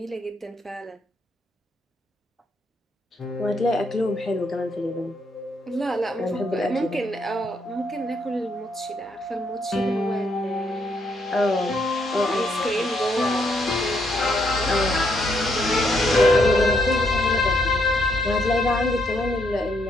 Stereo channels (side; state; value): both; normal; correlation 0.75